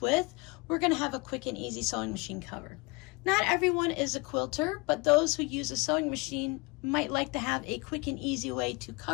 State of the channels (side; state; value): right; quieter; 27.9 dB